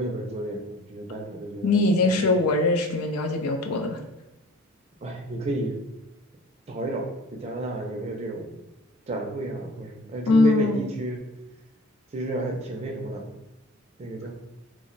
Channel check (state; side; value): normal; both; correlation 0.44